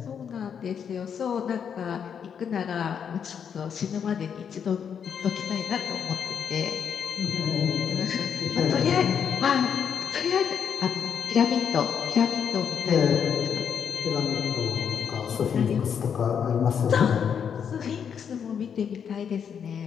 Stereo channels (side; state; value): right; quieter; 7.5 dB